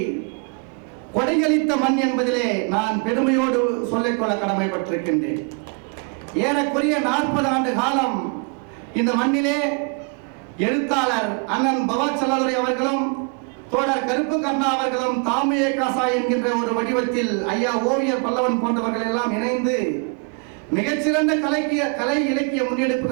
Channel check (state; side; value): quieter; left; 35.0 dB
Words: கொடையளித்த மண் என்பதிலே நான் பெருமையோடு சொல்லிக்கொள்ள கடமைப்பட்டிருக்கின்றேன். ஏறக்குறைய 40 ஆண்டு காலம் இந்த மண்ணிலே எழுத்தாளர் அண்ணன் பவா செல்லாதுரை அவர்களும் தோழர் கருப்பு கர்ணா அவர்களும் தாமியே காசா என்கின்ற ஒரு வடிவத்தில் ஐயா ஓவியர் பல்லவன் போன்றவர்கள் எல்லாம் இணைந்து மிகச்சிறந்த கலை இலக்கிய